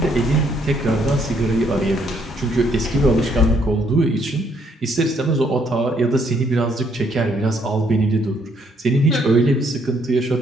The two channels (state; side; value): normal; both; correlation 0.69